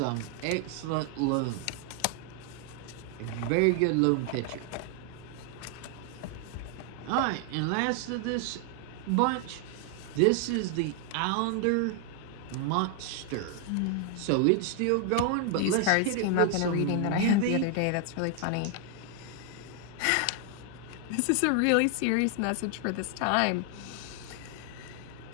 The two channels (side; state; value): both; different; correlation 0.00